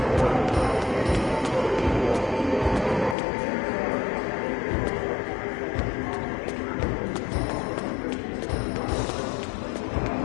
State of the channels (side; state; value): right; drops out; at 3.2 s